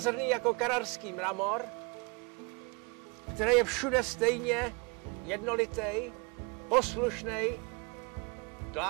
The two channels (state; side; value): quieter; left; 30.7 dB